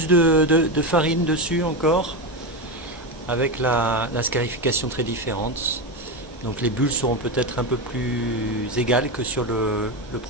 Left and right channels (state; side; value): normal; both; correlation 0.14